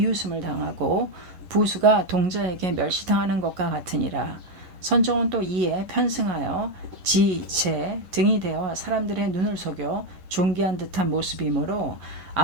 당하고 부수가 동자에게 멸시당하는 것과 같으니라. 선종은 또 이에 편승하여 지, 제 등이 되어 사람들의 눈을 속여 존귀한 듯한 모습이므로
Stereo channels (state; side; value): late; left; 11 ms